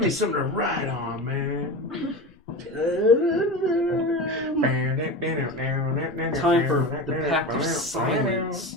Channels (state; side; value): normal; both; correlation 0.26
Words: me something to write on, man. Time for the Pact of